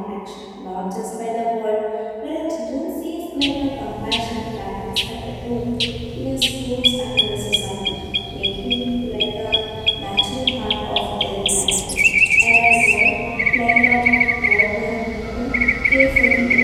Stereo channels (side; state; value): both; identical; correlation 1.00